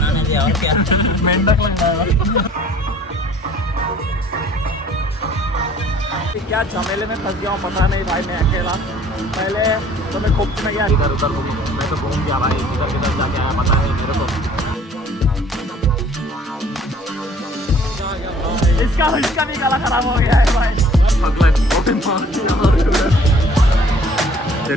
दे, और क्या। मेंढक लग रहा है। क्या झमेले में फंस गया हूँ पता नहीं भाई, मैं अकेला। पहले तो मैं खूब में गया इधर उधर, मैं तो घूम गया भाई, इधर किधर जाके आया पता है मेरे को। इसका भी गला खराब हो गया है भाई।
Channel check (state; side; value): normal; both; correlation 0.54